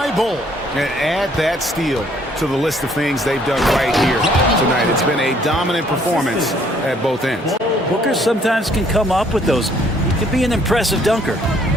Bull. And add that steal to the list of things they've done right here tonight. It's been a dominant performance at both ends. Booker sometimes can come up with those. He can be an impressive dunker.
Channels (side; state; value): both; normal; correlation 0.63